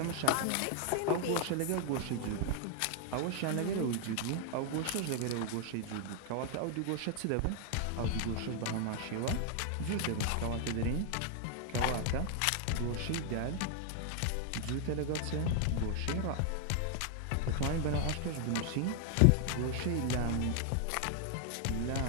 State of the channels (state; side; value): different; both; correlation 0.00